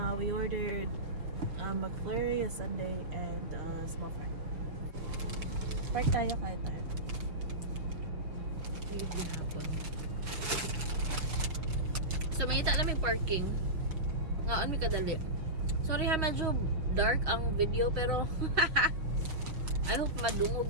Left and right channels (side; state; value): left; late; 6.3 ms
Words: We ordered McFlurry, a sundae, and small fry. Park tayo, kaya tayo. Hindi hapon. So mangita lang may parking. Ngaon mi kadali. Sorry ha, medyo dark ang video pero I hope